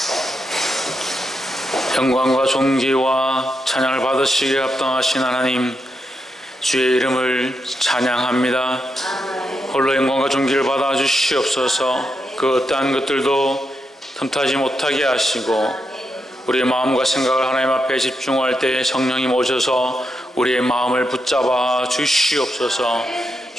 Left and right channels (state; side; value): normal; both; correlation 0.84